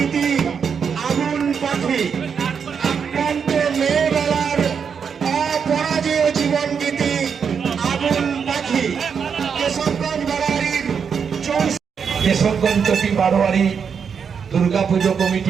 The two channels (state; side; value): quieter; left; 6.6 dB